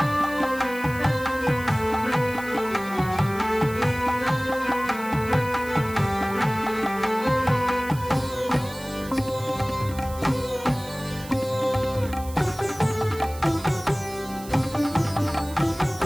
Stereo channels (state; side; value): noise; right; hiss, 17 dB below the sound